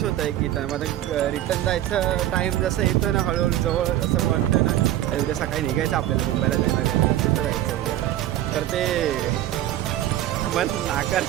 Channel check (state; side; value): quieter; left; 13.3 dB